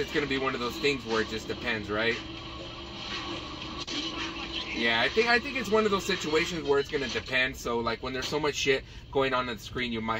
gonna be one of those things where it just depends, right? Yeah, I think it's one of those situations where it's gonna depend. So like when there's so much shit going on the screen, you might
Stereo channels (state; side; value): identical; both; correlation 1.00